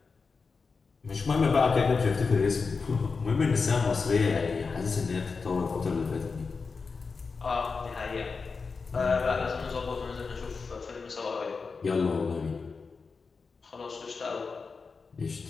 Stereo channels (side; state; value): right; quieter; 4.7 dB